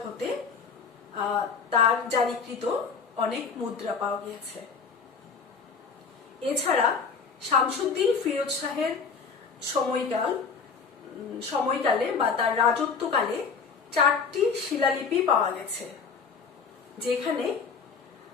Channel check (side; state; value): right; quieter; 5.5 dB